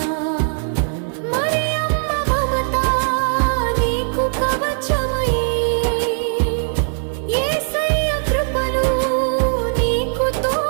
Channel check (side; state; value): left; silent; 66 dB below the other